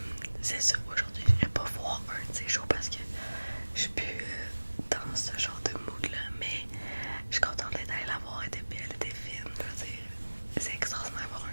c'est ça, aujourd'hui, je n'irai pas voir un de ces shows parce que je suis plus dans ce genre de mood-là. Mais je suis contente d'être allée la voir, elle était belle, elle était fine. Je veux dire, c'est extraordinaire d'avoir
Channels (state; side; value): inverted; both; correlation -1.00